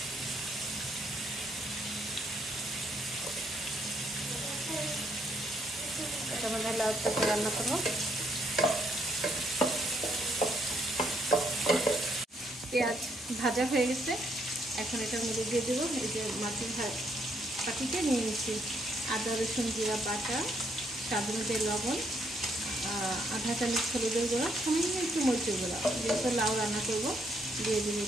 এটার মধ্যে লাউ তরকারি রান্না করবো। পেঁয়াজ ভাজা হয়ে গেছে, এখন এটার মধ্যে দিয়ে দেবো এই যে মাছের পাটিতে নিয়ে নিচ্ছি আদা রসুন জিরা বাটা, স্বাদ অনুযায়ী লবণ, আধা চামচ হলুদের গুঁড়া, সামান্য একটু মরিচের গুঁড়া, যেহেতু লাউ রান্না করবো দিয়ে দিবি।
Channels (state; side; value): normal; both; correlation 0.72